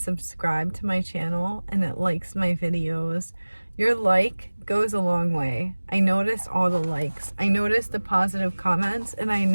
subscribed to my channel and that likes my videos. Your like goes a long way. I notice all the likes. I notice the positive comments, and I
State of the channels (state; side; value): inverted; both; correlation -1.00